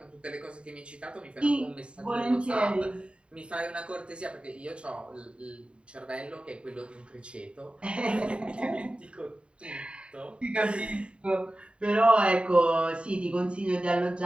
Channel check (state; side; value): late; left; 0.056 ms